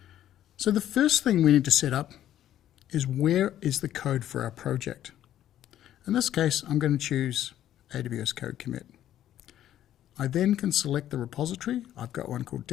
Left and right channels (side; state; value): right; quieter; 11.9 dB